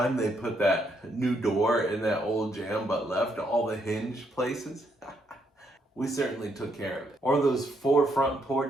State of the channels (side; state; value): both; normal; correlation 0.75